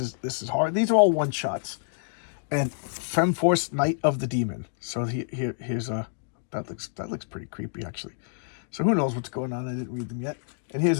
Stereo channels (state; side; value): silent; right; digital silence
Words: hard. These are all one shots. And Femforce Night of the Demon. So here's a that looks pretty creepy actually. So who knows what's going on? I didn't read them yet. And here's